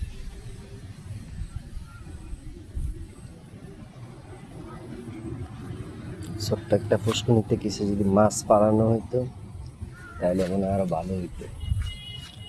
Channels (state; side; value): identical; both; correlation 1.00